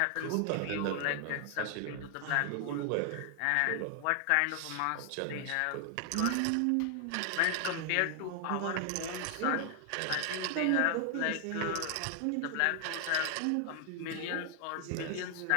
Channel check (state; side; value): different; both; correlation 0.00